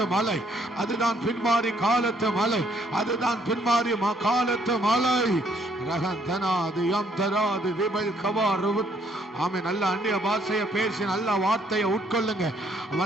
மலை, அதுதான் பின்மாரி காலத்து மலை, அதுதான் பின்மாரி காலத்து மலை. ரகந்தனா தராது யாம் தராது ரிபல் கவாரு. ஆமே, நல்ல அந்நிய பாஷையை பேசி நல்ல வார்த்தையை உட்கொள்ளுங்க.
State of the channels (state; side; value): normal; both; correlation 0.67